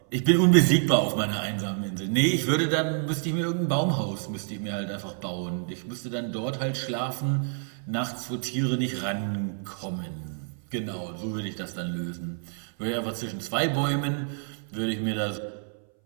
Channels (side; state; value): left; silent; 59 dB below the other